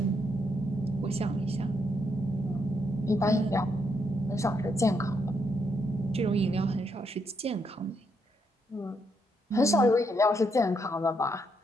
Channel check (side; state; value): both; normal; correlation 0.77